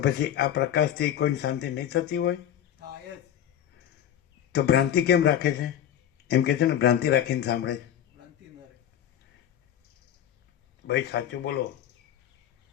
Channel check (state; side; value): quieter; right; 10.3 dB